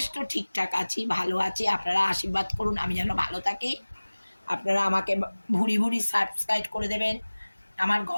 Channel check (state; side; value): inverted; both; correlation -1.00